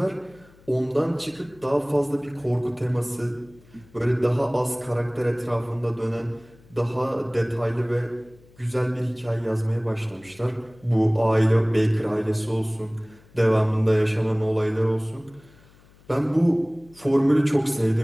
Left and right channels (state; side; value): noise; left; hum, 27 dB below the sound